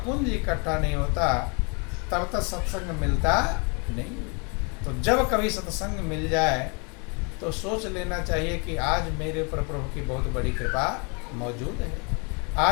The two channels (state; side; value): quieter; right; 33.6 dB